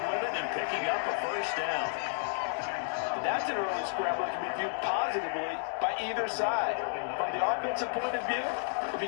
with it, and picking up a 1st down. That's an early scramble that can be viewed positively by either side. From the offensive point of view, it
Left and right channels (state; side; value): silent; right; digital silence